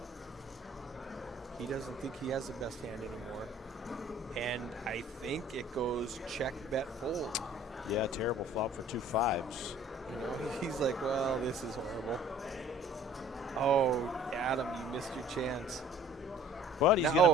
He doesn't think he has the best hand anymore. And I think it goes check, bet, fold. Yeah, terrible flop for 2 5s. He's like, well, this is horrible. Oh, Adam, you missed your chance. But he's going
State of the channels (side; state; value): both; normal; correlation 0.53